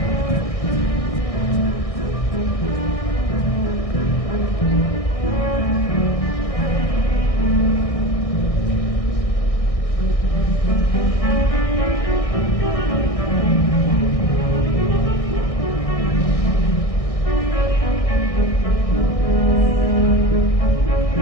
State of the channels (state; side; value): late; right; 1.6 ms